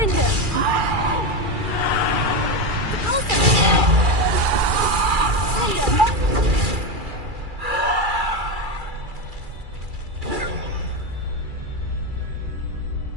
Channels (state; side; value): late; left; 2.3 ms